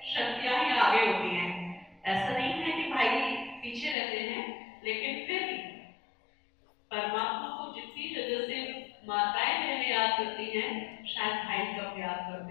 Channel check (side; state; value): right; drops out; at 4.0 s